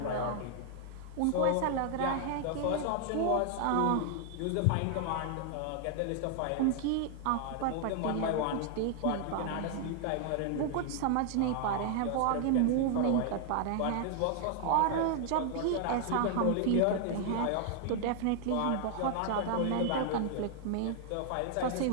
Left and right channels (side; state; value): both; different; correlation 0.00